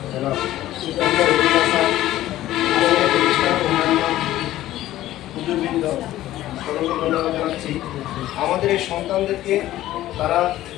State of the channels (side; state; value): right; quieter; 14.5 dB